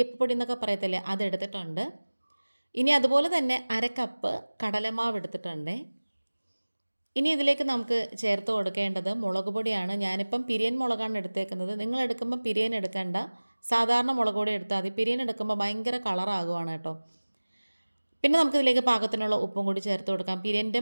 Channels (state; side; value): inverted; both; correlation -1.00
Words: എന്നൊക്കെ പറയത്തില്ലേ, അതെടുത്തിട്ടുണ്ട്. ഇനി അതുപോലെ തന്നെ 1/2 കപ്പ് കടലമാവ് എടുത്തിട്ടുണ്ട്. ഇനി ഇതിലേക്ക് നമുക്ക് ചേർത്ത് കൊടുക്കേണ്ടത് മുളക് പൊടിയാണ്. ഞാനിപ്പം പിരിയൻ മുളകാണ് എടുത്തേക്കുന്നത്. നിങ്ങൾ എടുക്കുമ്പോൾ പിരിയൻ എടുക്കേണ്ട, സാധാരണ മുളക് പൊടി എടുത്താൽ മതി. പിരിയൻ എടുക്കുമ്പോൾ ഭയങ്കര കളറാകുവാണ് കേട്ടോ. പിന്നെ നമുക്കിതിലേക്ക് പാകത്തിനുള്ള ഉപ്പും കൂടി ചേർത്ത് കൊടുക്കാം. പിരിയൻ്റെ